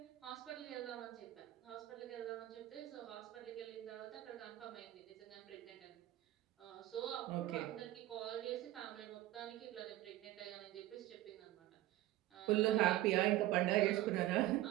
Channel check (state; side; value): quieter; left; 15.3 dB